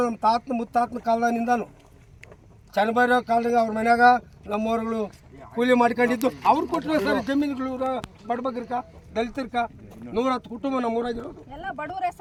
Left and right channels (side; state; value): both; identical; correlation 1.00